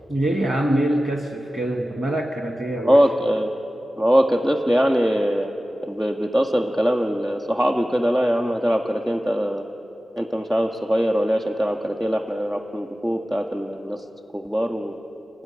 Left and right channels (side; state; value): both; normal; correlation 0.96